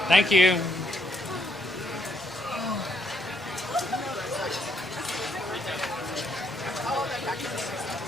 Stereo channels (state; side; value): normal; both; correlation 0.72